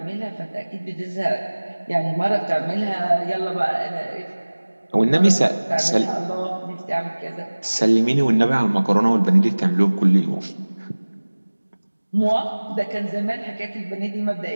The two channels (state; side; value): inverted; both; correlation -1.00